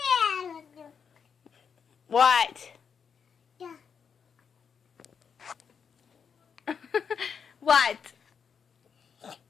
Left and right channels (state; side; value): quieter; right; 6.7 dB